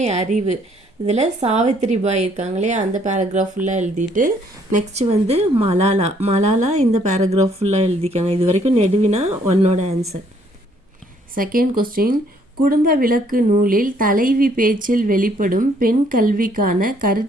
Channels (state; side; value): normal; both; correlation 0.65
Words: அறிவு, இதில் சாவித்திரிபாய் இருக்காங்களே அந்த பேராகிராஃப் ஃபுல்லாக எழுதிட்டு, நெக்ஸ்ட் வந்து மலாலா இந்த பேராகிராஃப் ஃபுல்லாக எழுதிக்கங்க. இது வரைக்கும் நெடுவினா ஒன்னோட ஆன்சர். செகண்ட் கொஸ்டின், குடும்ப விளக்கு நூலில் தலைவி பேச்சில் வெளிப்படும் பெண் கல்விக்கான